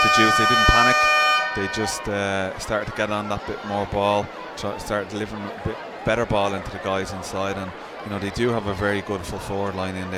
Judes, they didn't panic. They just started to get on that bit more ball, started delivering a bit better ball into the guys inside, and you know they do have a very good full forward line in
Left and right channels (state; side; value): identical; both; correlation 1.00